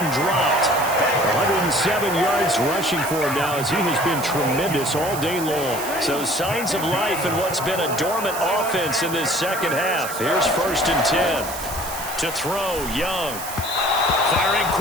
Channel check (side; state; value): right; noise; hiss, 9 dB below the sound